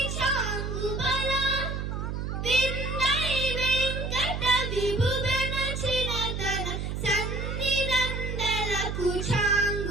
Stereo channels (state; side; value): noise; right; hum, 3 dB below the sound